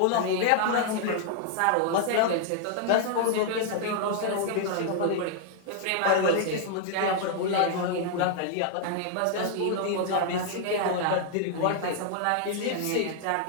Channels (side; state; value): both; different; correlation -0.01